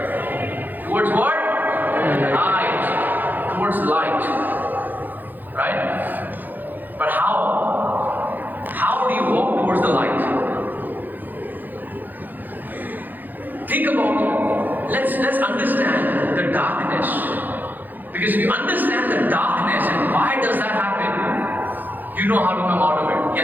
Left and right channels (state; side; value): late; left; 0.086 ms